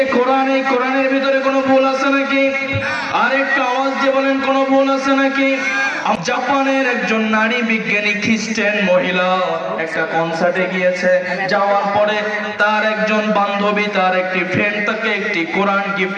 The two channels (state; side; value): identical; both; correlation 1.00